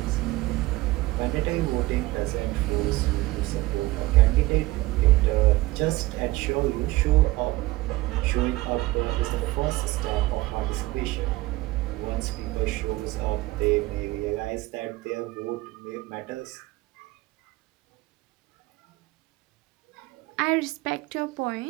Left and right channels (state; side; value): quieter; left; 19.5 dB